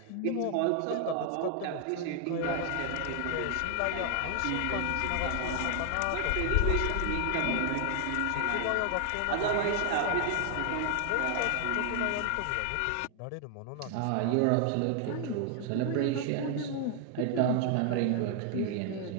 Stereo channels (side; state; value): both; different; correlation 0.00